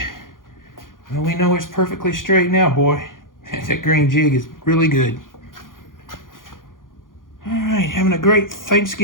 well, we know it's perfectly straight now, boy. That green jig is really good. All right, having a great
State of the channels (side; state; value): right; late; 0.90 ms